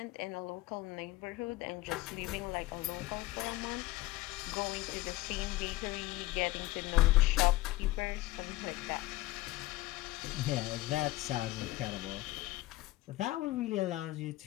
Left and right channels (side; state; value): right; quieter; 18.3 dB